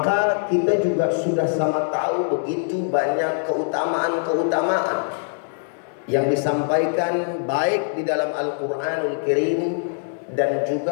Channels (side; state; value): right; silent; digital silence